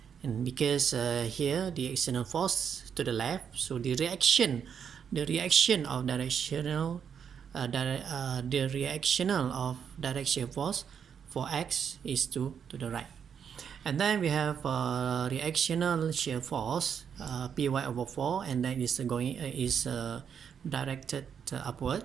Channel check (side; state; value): left; quieter; 7.6 dB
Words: And because here the external force to the left, so the reaction of directional direct shear force for x is to the right. And then we have reactional shear force Py over 4, and then is directed upward